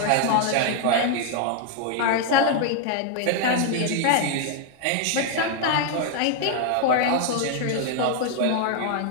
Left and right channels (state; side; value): different; both; correlation 0.00